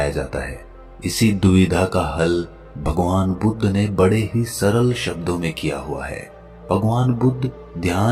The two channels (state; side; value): identical; both; correlation 1.00